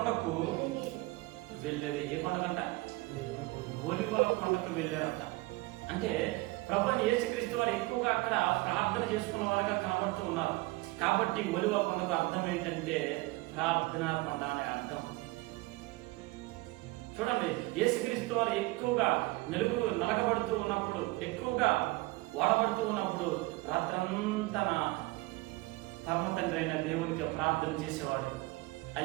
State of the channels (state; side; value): quieter; left; 21.9 dB